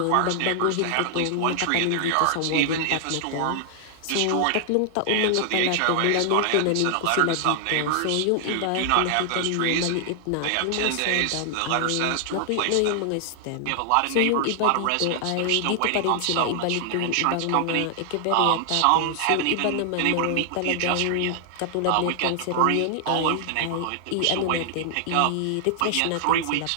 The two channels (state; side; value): different; both; correlation 0.00